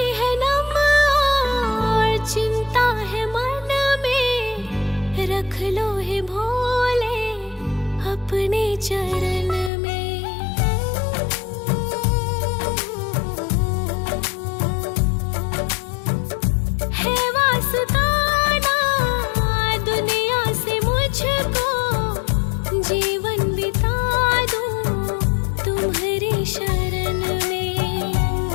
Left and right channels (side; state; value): right; drops out; at 9.7 s